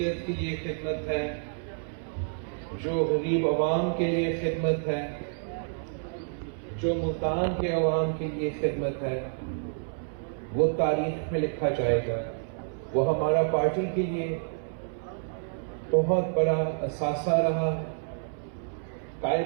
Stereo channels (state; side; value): silent; left; 59 dB below the other